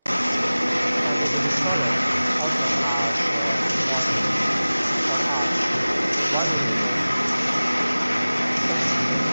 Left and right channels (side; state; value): both; inverted; correlation -0.98